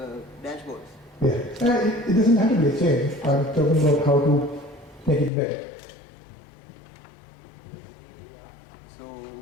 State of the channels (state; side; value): drops out; right; at 5.3 s